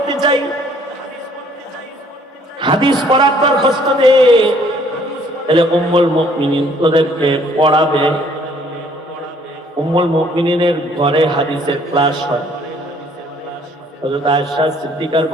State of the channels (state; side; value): normal; both; correlation 0.60